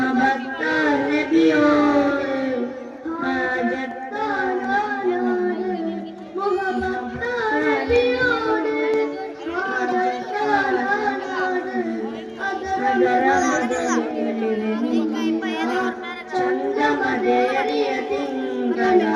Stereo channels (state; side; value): identical; both; correlation 1.00